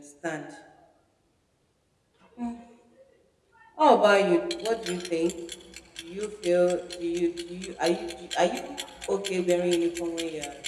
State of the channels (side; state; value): both; identical; correlation 1.00